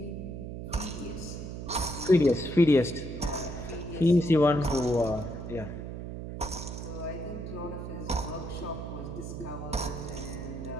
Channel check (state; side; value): noise; right; hum, 7 dB below the sound